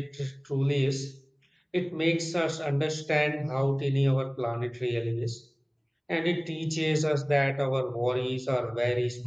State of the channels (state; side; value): identical; both; correlation 1.00